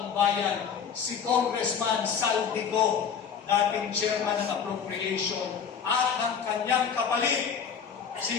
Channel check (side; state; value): right; quieter; 7.1 dB